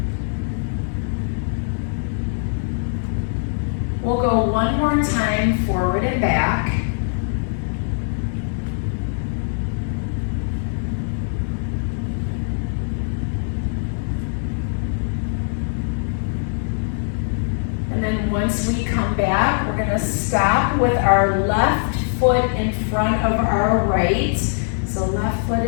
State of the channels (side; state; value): right; silent; digital silence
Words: We'll go one more time, forward and back. And then once we come back, we're gonna stop with our left foot in front of our right. So left foot